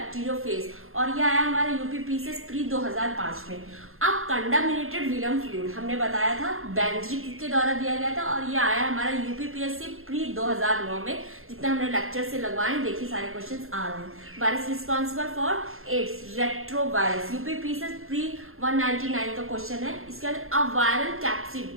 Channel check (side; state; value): left; late; 0.61 ms